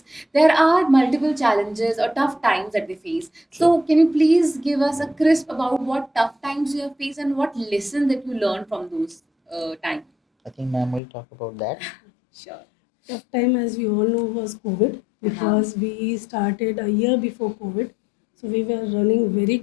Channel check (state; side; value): drops out; right; at 11.0 s